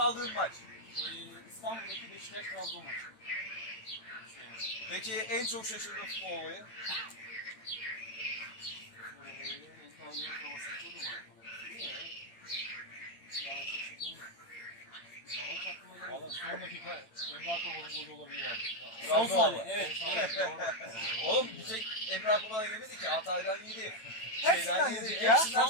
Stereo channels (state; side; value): late; right; 9.0 ms